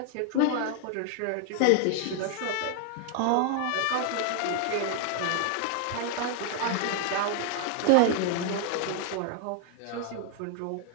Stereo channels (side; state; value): both; different; correlation 0.00